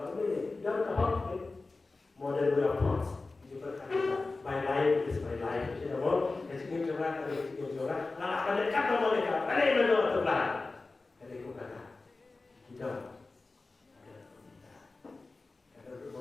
ini jangan kahok model weapons juga kan my life is my life jadi apa jadi coba kalau coba nah pada kata mereka pada menurut Tuhan dari kata kita ada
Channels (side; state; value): right; quieter; 3.6 dB